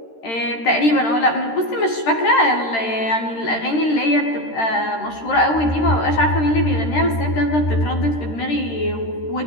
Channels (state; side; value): late; right; 13 ms